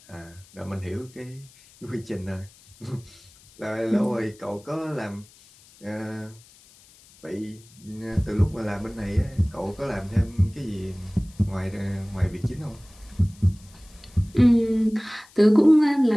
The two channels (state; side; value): noise; left; hiss, 26 dB below the sound